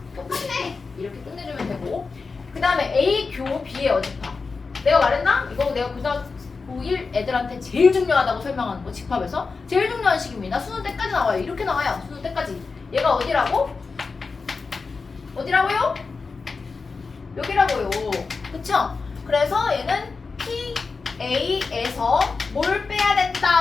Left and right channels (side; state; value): right; quieter; 4.5 dB